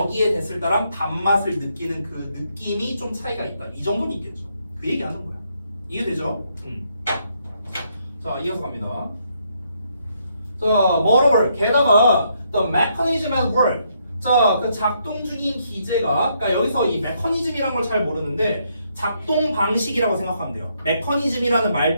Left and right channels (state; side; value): inverted; both; correlation -0.74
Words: 됐을 때랑 단맛을 느끼는 그 느낌이 좀 차이가 있다. 이 정도는 있겠죠. 그 얘기하는 거야. 이해되죠? 자, 이어서 갑니다. 자, moreover, 게다가 the mechanism at work. 자, 그 작동 중인 기제가, 그러니까 여기서 이 메커니즘이라는 걸 잘 모르는데 작동 방식이라고 생각하면 돼요. 메커니즘이라는